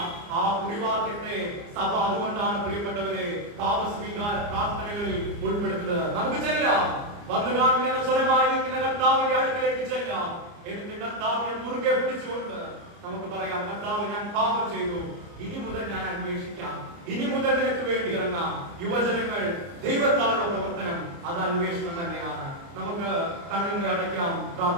ആ കുറിവാക്യത്തെ സഭ അതുകൊണ്ടാണ് പ്രിയപ്പെട്ടവരെ പാപസ്വീകാര പ്രാർത്ഥനകളിൽ ഉൾപ്പെടുത്തുന്നത്. നമുക്ക് ചെല്ലാം, വന്നു കാണുന്ന സ്വരമായി നിൽക്കുന്ന കർത്താവിന്റെ അടുക്കലേക്ക് ചെല്ലാം. എന്നിട്ട് കർത്താവിനെ മുറുകെ പിടിച്ചുകൊണ്ട് നമുക്ക് പറയാം, കർത്താവ്, ഞാൻ പാപം ചെയ്തു, ഇനി മുതൽ ഞാൻ അന്വേഷിക്കാം, ഇനി മുതൽ നിനക്ക് വേണ്ടി ഇറങ്ങാം. യുവജനങ്ങൾ, ദൈവത്താലുള്ള പ്രവർത്തനം അത് അന്വേഷണം തന്നെയാണ്. നമുക്ക് കണ്ണുകളെ അടയ്ക്കാം,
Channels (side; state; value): left; late; 29 ms